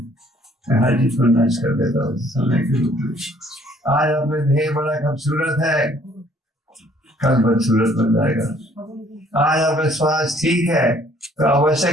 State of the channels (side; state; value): both; normal; correlation 0.60